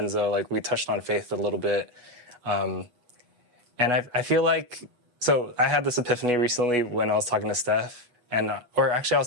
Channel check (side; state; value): left; late; 8.2 ms